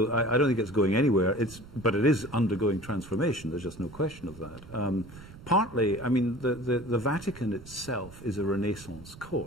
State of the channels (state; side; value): noise; right; rumble, 18 dB below the sound